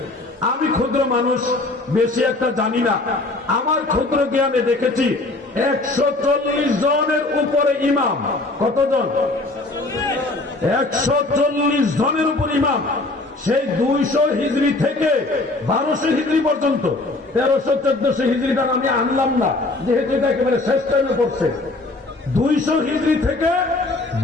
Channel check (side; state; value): right; quieter; 3.0 dB